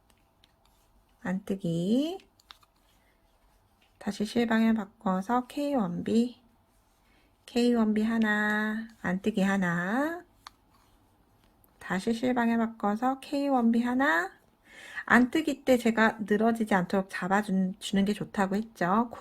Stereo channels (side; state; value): both; identical; correlation 1.00